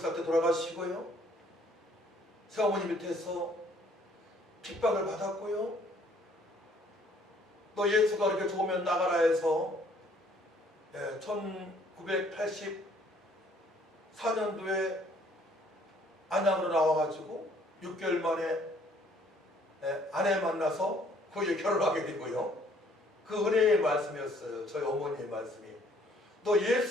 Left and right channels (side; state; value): both; normal; correlation 0.61